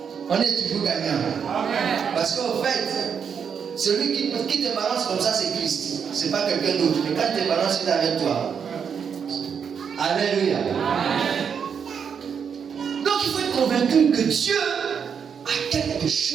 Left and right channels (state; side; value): quieter; left; 7.0 dB